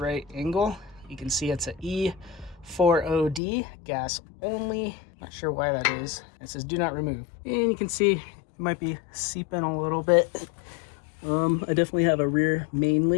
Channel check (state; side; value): drops out; right; at 3.4 s